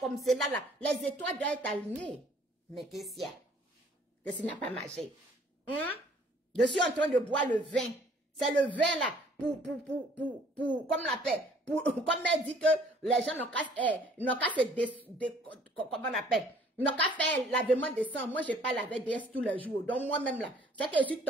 comme cela, là, les étoiles doivent être alignées. Mais qu'est-ce qu'il y a? Qu'est-ce qui n'a pas marché? Je suis en train de boire le vin. C'est le vin, là, comme on l'appelle, comme elle dit que les gens n'ont qu'à comment on appelle? Ils n'ont qu'à faire lavement de sang. Moi, je n'ai pas lavé DS tous les jours. Donc, moi-même, là, c'est que je suis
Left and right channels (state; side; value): normal; both; correlation 0.57